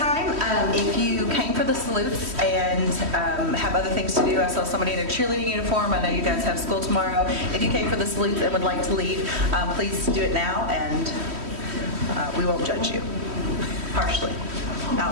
if you came for the salutes and have other things to do, I saw somebody in a cheerleading uniform. I know you guys have school tomorrow. If you came for the salutes and would like to leave, please do it now, and we won't judge you harshly,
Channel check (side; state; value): left; late; 3.1 ms